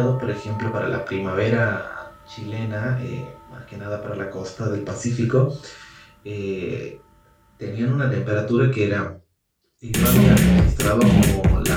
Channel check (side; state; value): both; identical; correlation 1.00